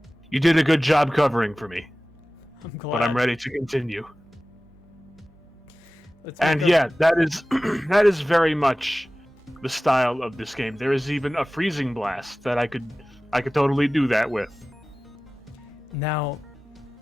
You did a good job covering for me. I'm glad. But I'm ready to continue. And yeah, that is that is very much the style of this game. There is even a freezing blast that I could totally do that with. Now,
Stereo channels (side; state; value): both; normal; correlation 0.97